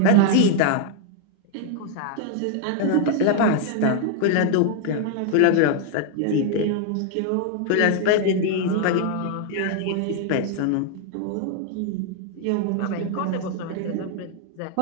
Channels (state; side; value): different; both; correlation 0.00